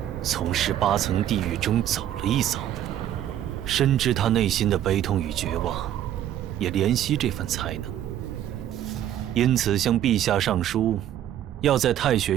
从18层地狱中走了一遭，深知他内心的悲痛与绝望，也怜惜这份才能，因此向陛下上书，要在太学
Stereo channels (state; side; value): quieter; left; 11.4 dB